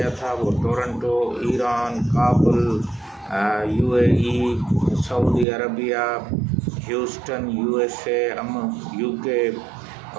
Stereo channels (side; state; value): left; drops out; at 5.5 s